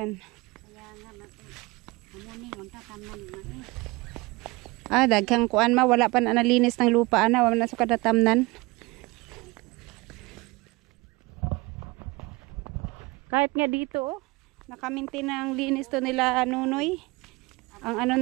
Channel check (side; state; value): left; quieter; 23.8 dB